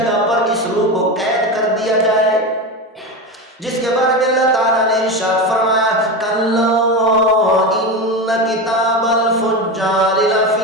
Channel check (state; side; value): normal; both; correlation 0.20